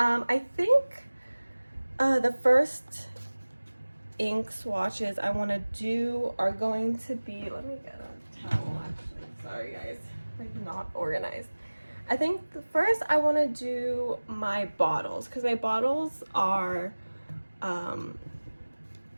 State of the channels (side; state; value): both; inverted; correlation -1.00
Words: think the first ink swatches I want to do are going to be, let me get a towel actually, sorry guys, like not organized. I think first I want to do my bottles, because my bottles are